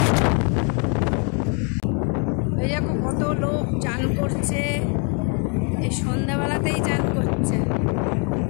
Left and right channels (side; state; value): right; quieter; 37.6 dB